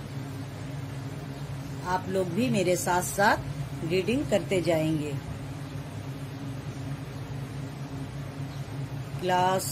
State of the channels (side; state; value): both; identical; correlation 1.00